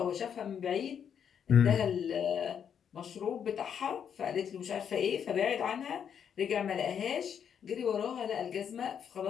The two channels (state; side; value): quieter; right; 8.0 dB